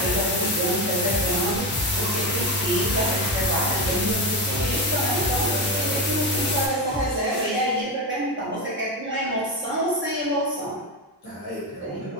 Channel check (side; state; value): both; normal; correlation 0.16